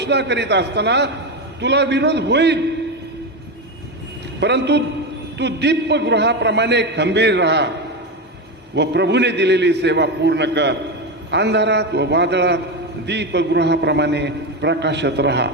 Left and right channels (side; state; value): both; normal; correlation 0.15